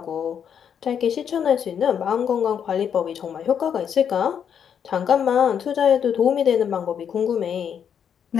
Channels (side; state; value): right; quieter; 8.1 dB